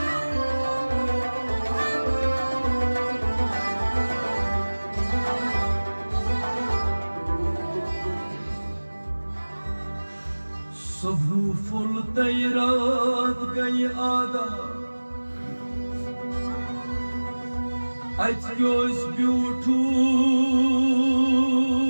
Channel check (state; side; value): inverted; both; correlation -1.00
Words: सुबह फुल रात गई आदा अच ब्यूठू